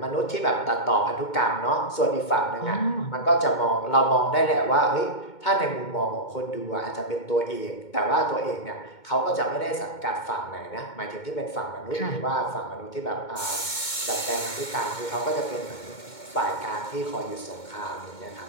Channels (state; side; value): late; right; 2.2 ms